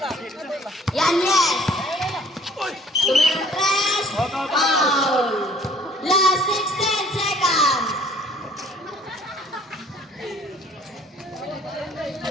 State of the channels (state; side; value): normal; both; correlation 0.56